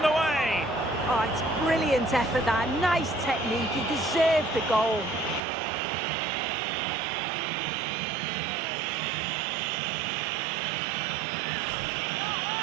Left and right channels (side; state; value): left; drops out; at 5.4 s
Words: the way! Oh, it's brilliant effort, that. Nice technique. He deserved the goal.